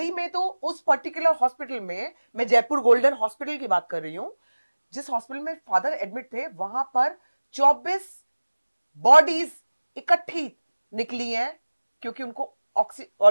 में तो उस पर्टिकुलर हॉस्पिटल में, मैं जयपुर गोल्डन हॉस्पिटल की बात कर रही हूं, जिस हॉस्पिटल में फादर एडमिट थे, वहां पर 24 बॉडीज इकट्ठी निकली हैं क्योंकि उनको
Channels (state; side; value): inverted; both; correlation -1.00